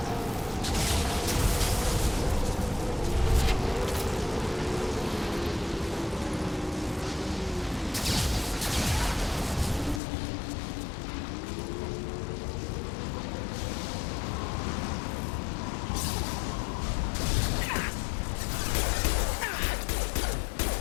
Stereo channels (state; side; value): drops out; right; at 10.0 s